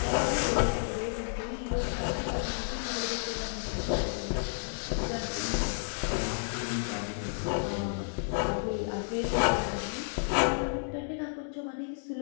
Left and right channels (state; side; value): silent; right; digital silence